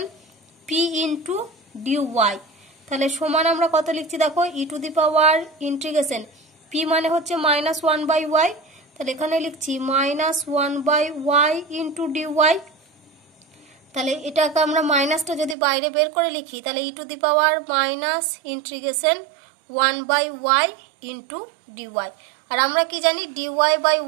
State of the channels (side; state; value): left; drops out; at 15.6 s